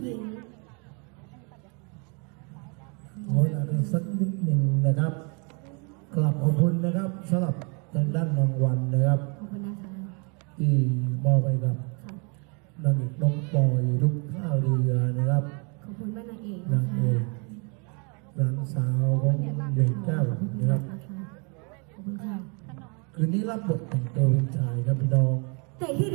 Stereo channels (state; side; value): quieter; left; 34.7 dB